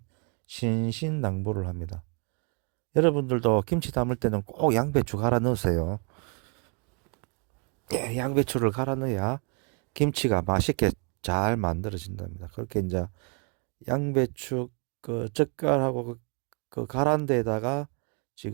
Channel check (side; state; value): left; quieter; 37.5 dB